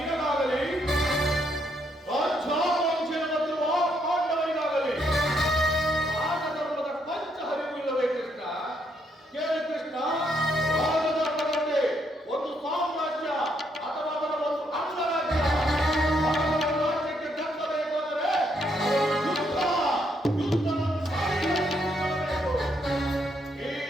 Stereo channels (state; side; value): normal; both; correlation 0.74